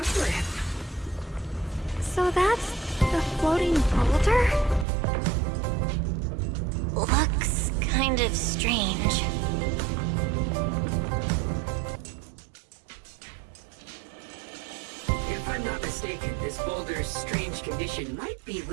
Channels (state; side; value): drops out; left; at 4.9 s